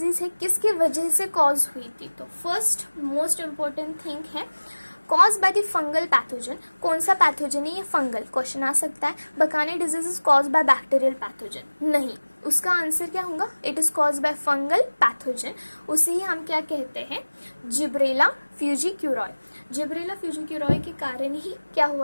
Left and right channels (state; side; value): inverted; both; correlation -1.00